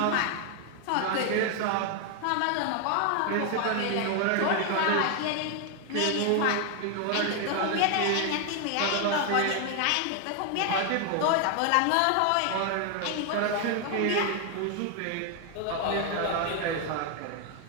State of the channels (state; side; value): different; both; correlation 0.00